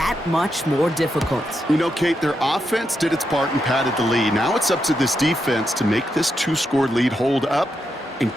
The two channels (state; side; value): normal; both; correlation 0.84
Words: much more difficult. You know, Kate, their offense did its part and padded the lead. Now it's up to this defense to make this 2-score lead hold up and